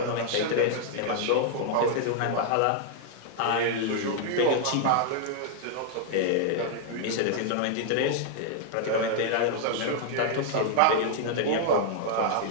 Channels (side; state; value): both; different; correlation -0.01